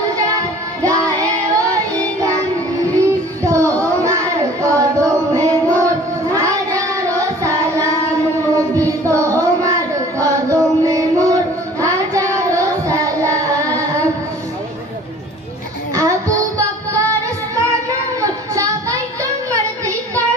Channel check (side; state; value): both; normal; correlation 0.49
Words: যার গায়ে ওই গান, তোমার কদমে মোর হাজারো সালাম, নবী তোমার কদমে মোর হাজারো সালাম। আবু বকর ওসমান ওমর সবাই তোমার